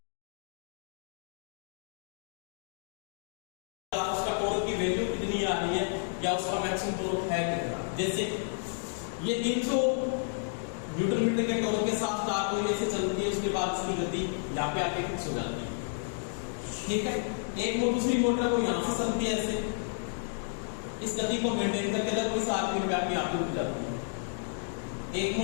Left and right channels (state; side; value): silent; right; digital silence